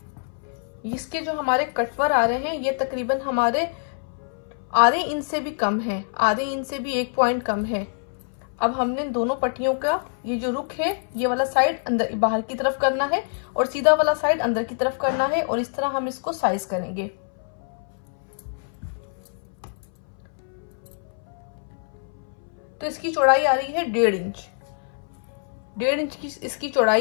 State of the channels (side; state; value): right; silent; 60 dB below the other